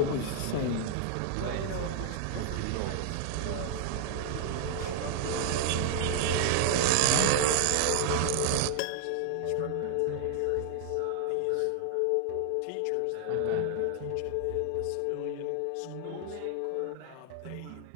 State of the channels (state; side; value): different; both; correlation 0.00